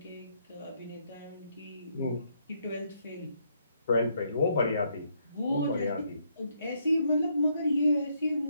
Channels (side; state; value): both; inverted; correlation -0.74